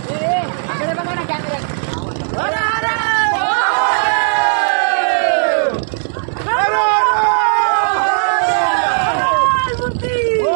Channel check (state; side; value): silent; left; digital silence